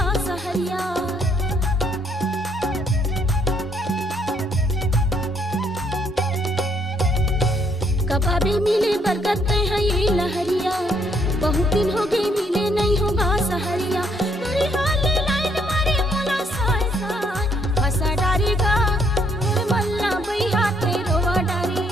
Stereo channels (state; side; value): normal; both; correlation 0.70